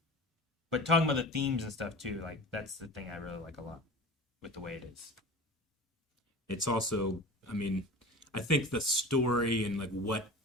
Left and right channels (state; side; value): normal; both; correlation 0.35